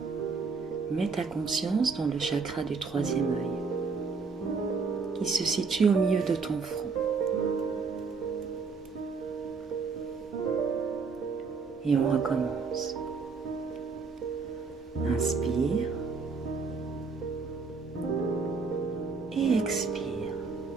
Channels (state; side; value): quieter; left; 4.8 dB